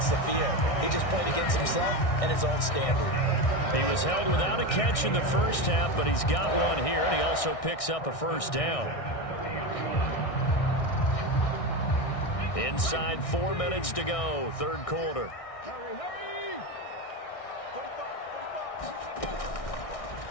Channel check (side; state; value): right; late; 1.6 ms